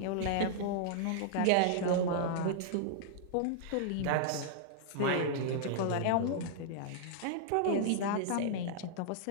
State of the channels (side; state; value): both; different; correlation -0.01